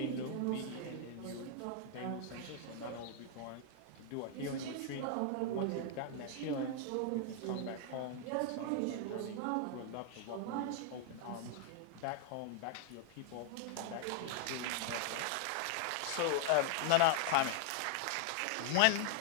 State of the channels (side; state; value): both; different; correlation 0.00